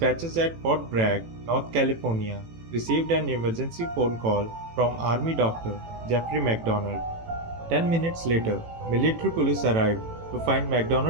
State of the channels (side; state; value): left; late; 18 ms